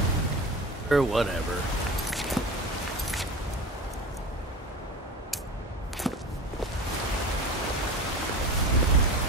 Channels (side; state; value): both; normal; correlation 0.31